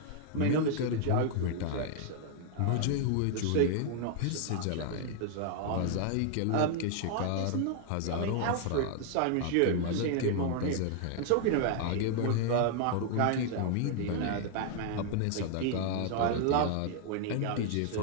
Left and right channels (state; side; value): different; both; correlation 0.00